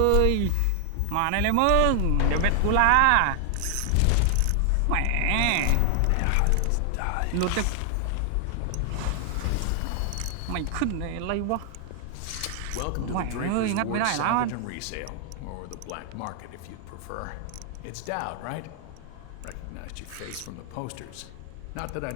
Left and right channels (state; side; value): different; both; correlation 0.00